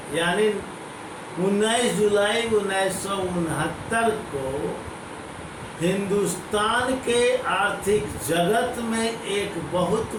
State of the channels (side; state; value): both; identical; correlation 1.00